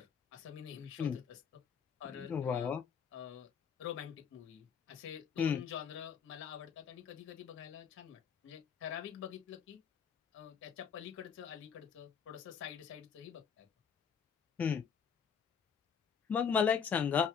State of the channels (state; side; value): quieter; right; 7.0 dB